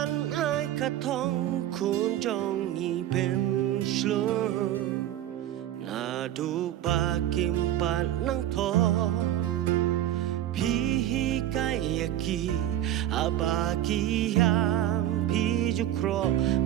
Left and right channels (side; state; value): left; quieter; 12.4 dB